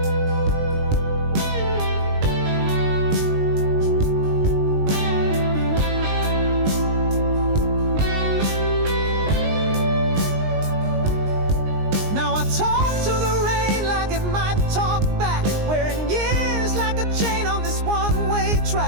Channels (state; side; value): late; left; 19 ms